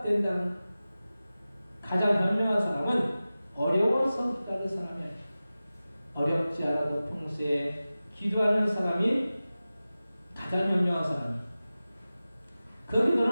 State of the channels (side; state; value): both; inverted; correlation -0.96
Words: 가장 현명한 사람은 어려워서 기도하는 사람이 아니에요. 어렵지 않아도 평소에 기도하는 사람이 가장 현명한 사람이에요. 그